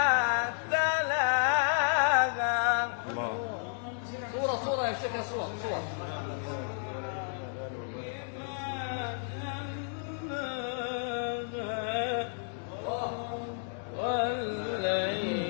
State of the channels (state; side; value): silent; right; digital silence